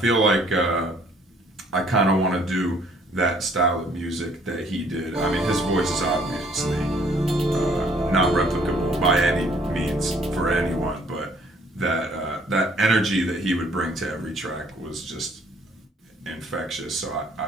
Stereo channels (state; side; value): normal; both; correlation 0.61